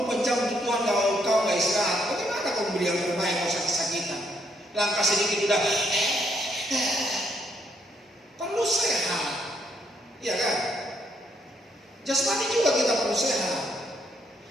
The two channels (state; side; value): normal; both; correlation 0.73